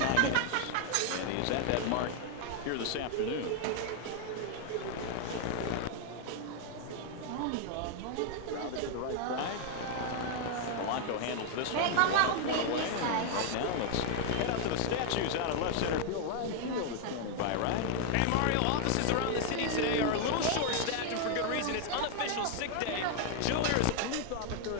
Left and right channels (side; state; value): both; different; correlation 0.00